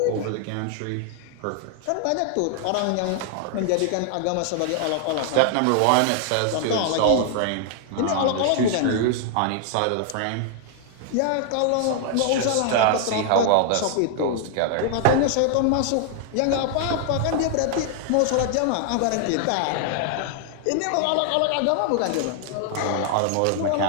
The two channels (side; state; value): both; different; correlation 0.00